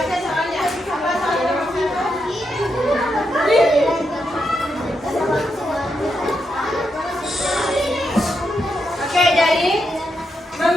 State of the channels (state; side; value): normal; both; correlation 0.83